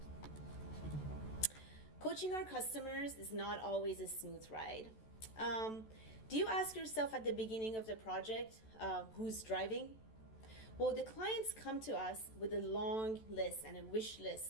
Coaching our customers is not always a smooth ride. Do you ask yourself at the beginning of the project, who's driving? Well, the clients come to us with a long list and a wish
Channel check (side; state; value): right; late; 14 ms